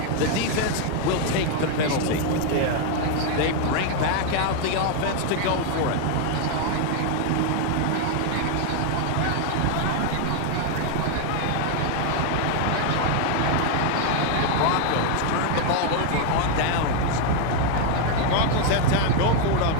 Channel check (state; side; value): different; both; correlation 0.00